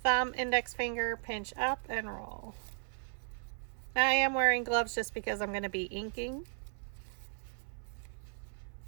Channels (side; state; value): left; silent; 54 dB below the other